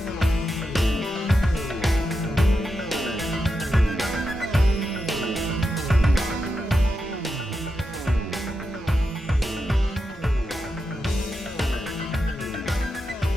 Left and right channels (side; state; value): both; normal; correlation 0.87